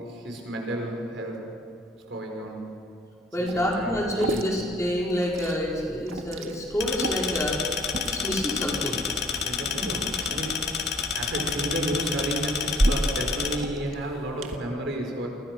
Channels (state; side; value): normal; both; correlation 0.58